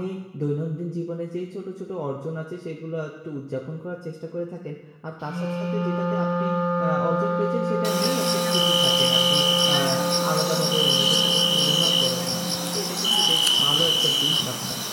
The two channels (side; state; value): both; identical; correlation 1.00